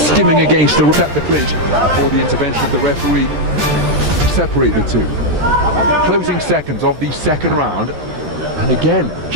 against the clinch before the intervention of the referee to separate the two. Closing seconds of the second round, and again,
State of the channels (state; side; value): late; left; 13 ms